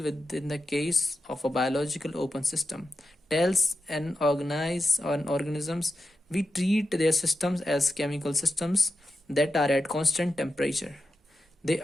with in the case of a biological open system? Tells and organisms, we treat their systems as chemical systems that are at constant temperature. They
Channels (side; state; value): both; normal; correlation 0.90